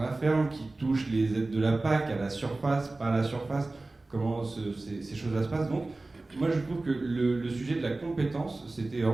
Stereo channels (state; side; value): quieter; left; 3.1 dB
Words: ferme, qui touchent les aides de la PAC, à la surface, pas à la surface, comment ces choses-là se passent. Donc, moi je trouve que le sujet de la compétence, c'était